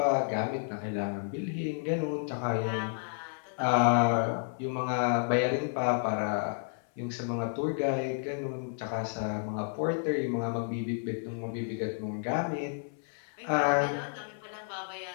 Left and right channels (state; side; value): silent; right; 57 dB below the other